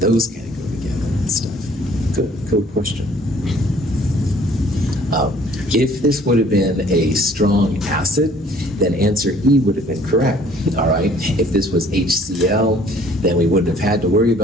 kind of go together and stuff. Good question. If this would have been a strong acid, then answer E would have been correct, all right? If this was HCl, then we wouldn't have had to worry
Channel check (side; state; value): both; normal; correlation 0.56